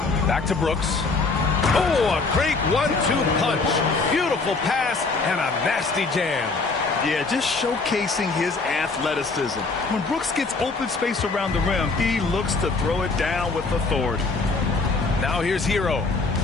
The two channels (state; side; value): quieter; right; 4.0 dB